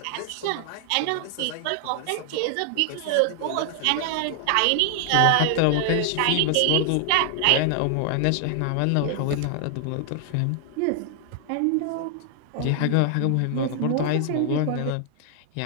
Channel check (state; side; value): different; both; correlation 0.00